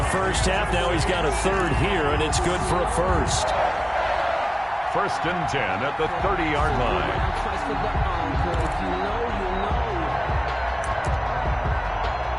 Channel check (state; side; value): identical; both; correlation 1.00